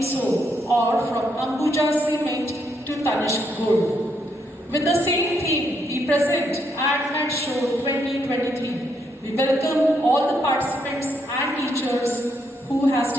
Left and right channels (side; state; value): both; normal; correlation 0.76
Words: soap, or from Ambuja Cement to Tanishq Gold. With the same theme, we present AdMat Show 2023. We welcome all the participants and teachers who has